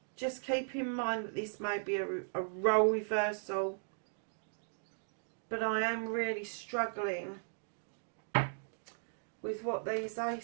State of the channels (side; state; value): left; silent; digital silence